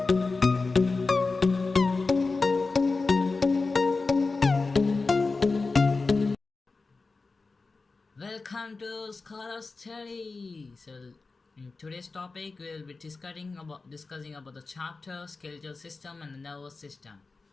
to Scholar Study. So, in today's topic, we will be discussing about the chapter skeletal system and the nervous system.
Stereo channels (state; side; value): quieter; right; 3.9 dB